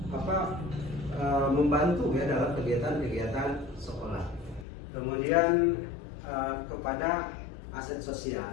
membantu ya dalam kegiatan-kegiatan sekolah. Kemudian kepada aset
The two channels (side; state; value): right; drops out; at 4.7 s